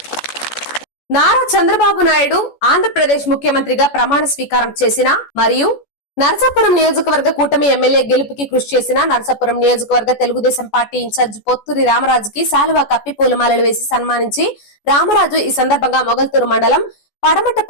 నారా చంద్రబాబు నాయుడు ఆంధ్రప్రదేశ్ ముఖ్యమంత్రిగా ప్రమాణ స్వీకారం చేసిన మరియు నరసాపురం నియోజకవర్గ కూటమి ఎమ్మెల్యే గెలుపుకి కృషి చేసిన నరసాపురం నియోజకవర్గ తెలుగుదేశం పార్టీ ఇన్ఛార్జ్ పొత్తూరి రామరాజుకి శాలువా కప్పి పూలమాలలు వేసి సన్మానించి రామరాజు ఈ సందర్భంగా మొగల్తూరు మండలం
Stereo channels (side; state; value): right; late; 14 ms